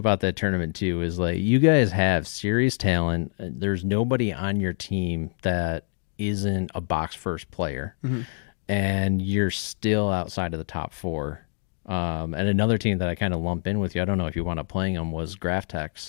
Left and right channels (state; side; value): silent; right; digital silence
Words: that tournament too. Is you guys have serious talent. There's nobody on your team that isn't a box first player, and you're still outside of the top 4. And another team that I kind of lump in with you, I don't know if you want to playing them, was